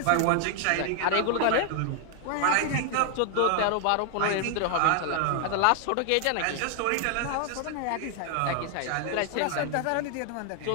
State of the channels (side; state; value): both; different; correlation 0.00